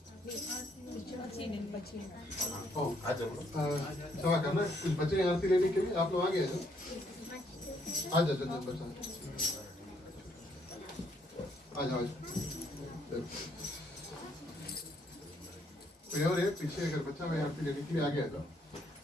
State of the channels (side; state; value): both; normal; correlation 0.69